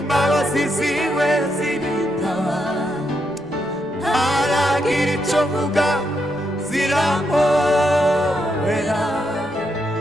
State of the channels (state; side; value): noise; left; rumble, 29 dB below the sound